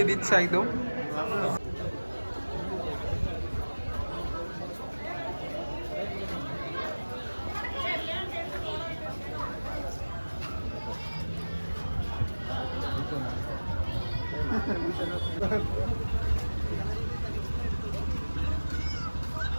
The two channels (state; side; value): inverted; both; correlation -1.00